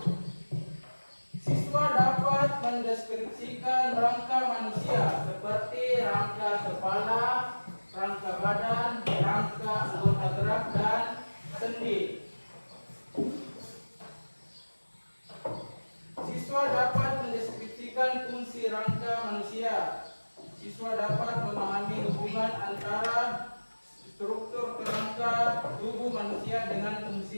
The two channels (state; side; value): inverted; both; correlation -1.00